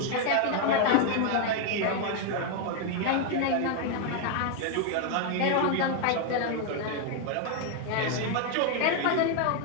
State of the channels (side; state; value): both; different; correlation 0.01